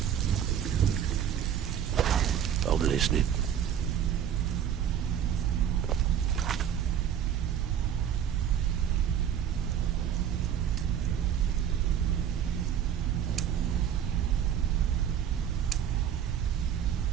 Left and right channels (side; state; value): left; quieter; 9.3 dB